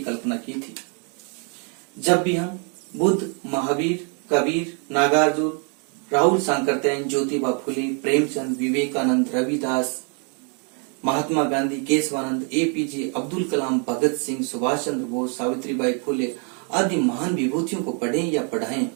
की थी। जब भी हम बुद्ध, महावीर, कबीर, नागार्जुन, राहुल सांकरतैन, ज्योतिबा फुले, प्रेमचंद, विवेकानंद, रविदास, महात्मा गांधी, केशवानंद, एपीजे अब्दुल कलाम, भगत सिंह, सुभाष चंद्र बोस, सावित्रीबाई फुले आदि महान विभूतियों को पढ़ें या पढ़ाएं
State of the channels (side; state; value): left; quieter; 39.0 dB